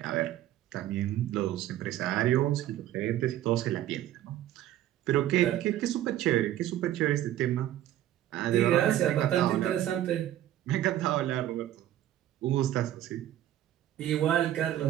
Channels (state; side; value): quieter; left; 12.8 dB